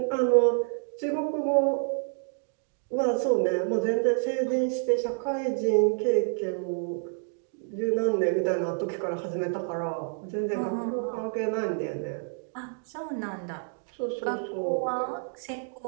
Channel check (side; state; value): left; silent; 59 dB below the other